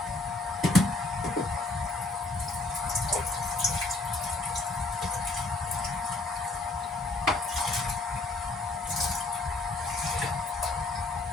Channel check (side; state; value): right; quieter; 3.1 dB